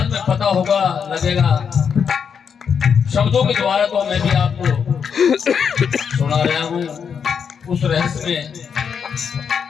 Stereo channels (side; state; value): right; quieter; 6.9 dB